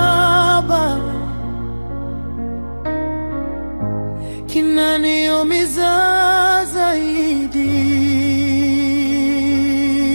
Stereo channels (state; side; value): inverted; both; correlation -1.00